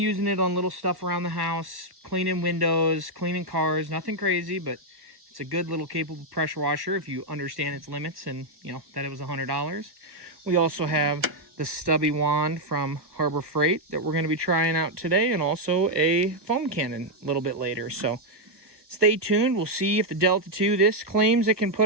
it on little stuff around the house, cleaning windows, cleaning cars, nothing crazy, but it's a good little capable pressure washer if you understand its limits and, you know, that it was $100. We also have the stubby wand from Harbor Freight that we're going to be trying out today, and also a foam cannon a little bit later. So stay tuned. We'll see if the Delta 2, this claims it can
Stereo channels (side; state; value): left; late; 1.1 ms